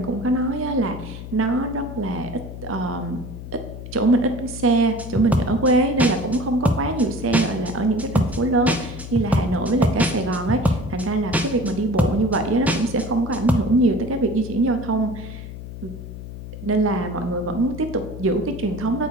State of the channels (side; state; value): left; noise; hum, 11 dB below the sound